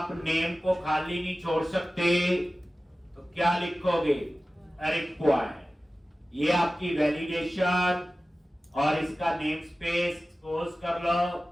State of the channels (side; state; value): both; normal; correlation 0.96